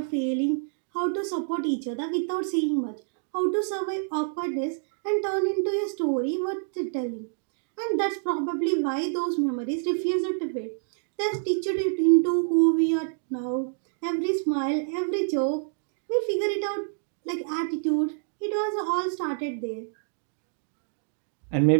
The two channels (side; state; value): left; silent; digital silence